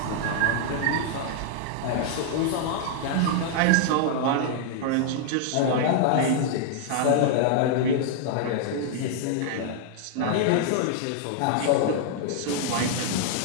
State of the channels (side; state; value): both; different; correlation -0.01